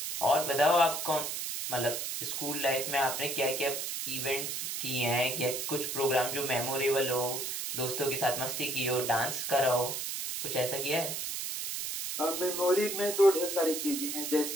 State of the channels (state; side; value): noise; right; hiss, 3 dB below the sound